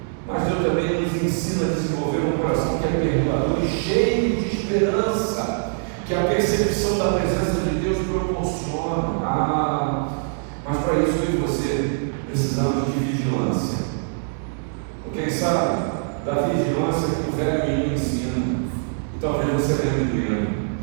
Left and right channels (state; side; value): silent; left; digital silence